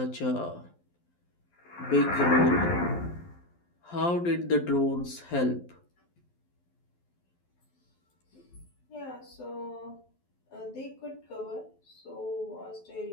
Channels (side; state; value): right; late; 12 ms